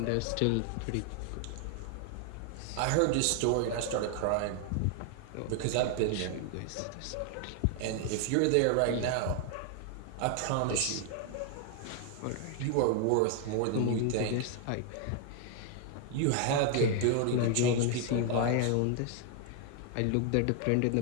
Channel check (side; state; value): both; different; correlation 0.00